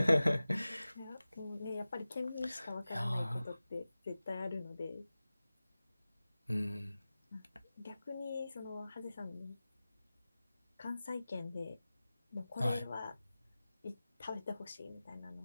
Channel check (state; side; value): inverted; both; correlation -0.96